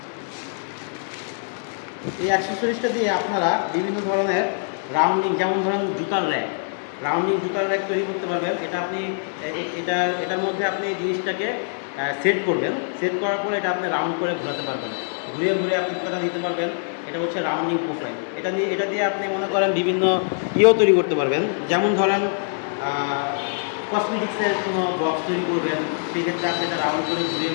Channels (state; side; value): silent; right; digital silence